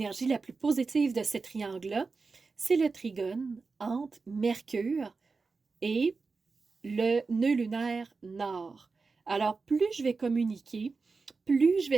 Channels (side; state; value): left; quieter; 4.3 dB